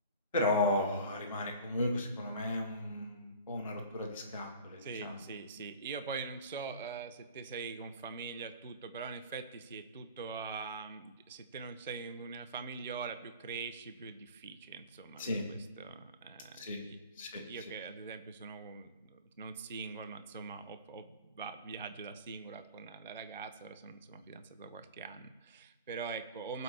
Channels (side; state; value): both; inverted; correlation -0.41